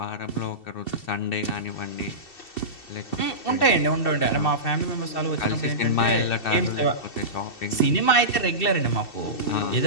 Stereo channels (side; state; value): right; late; 2.7 ms